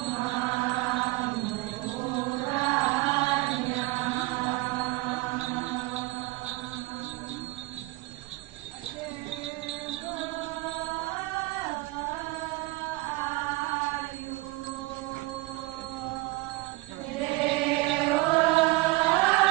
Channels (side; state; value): left; quieter; 21.0 dB